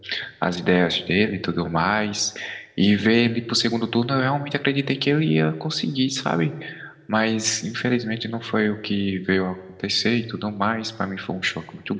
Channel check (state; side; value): identical; both; correlation 1.00